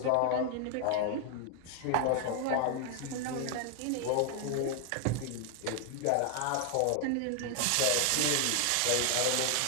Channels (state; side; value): different; both; correlation 0.00